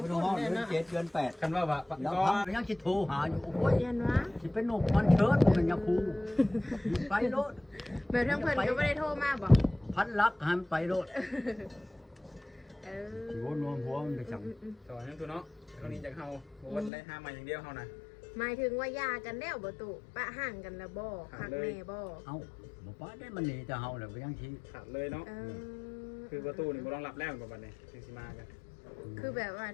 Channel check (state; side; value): drops out; right; at 16.9 s